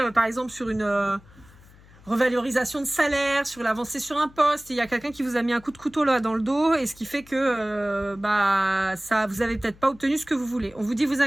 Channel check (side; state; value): left; noise; hum, 24 dB below the sound